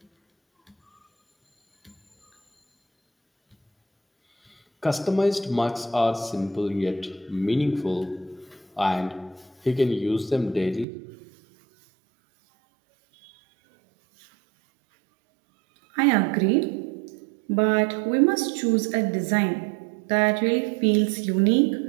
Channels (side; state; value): left; drops out; at 10.9 s